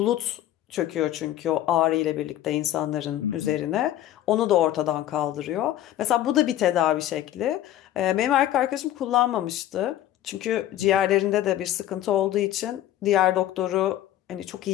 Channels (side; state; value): right; quieter; 12.8 dB